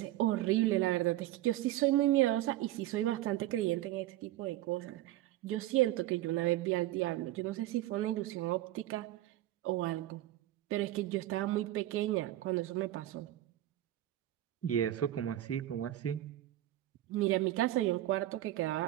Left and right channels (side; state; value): left; quieter; 14.7 dB